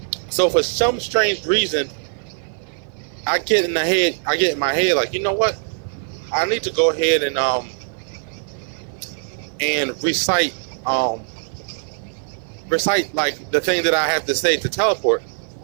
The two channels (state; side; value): silent; left; 56 dB below the other